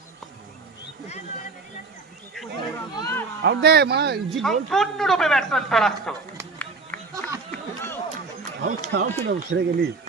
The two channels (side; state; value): left; quieter; 4.1 dB